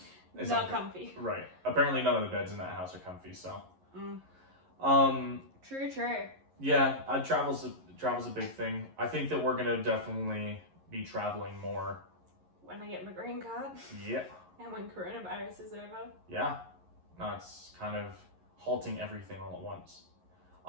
comfy. Right. Apparently none of the beds in that house are comfy, so. True. Yeah, travel's a big thing. I think that we're gonna definitely be traveling more. When I get my green card. Yeah. And when coronavirus is over. Yeah. No, it's kind of halting everything all at once.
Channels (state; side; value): late; left; 11 ms